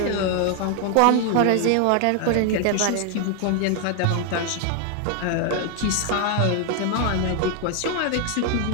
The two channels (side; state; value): both; different; correlation 0.00